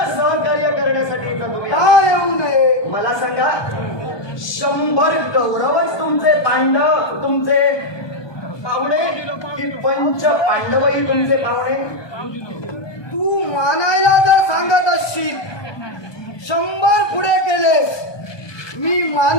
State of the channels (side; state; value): right; late; 1.2 ms